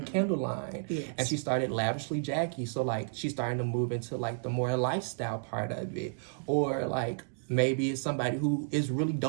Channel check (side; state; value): left; silent; digital silence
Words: candle line, and she started Lavishly Jackie. So, like, she's starting to move into, like, the more lifestyle part of it. Or, like, maybe it's somebody who is really